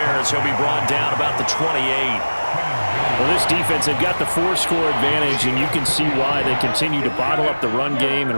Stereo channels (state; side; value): inverted; both; correlation -1.00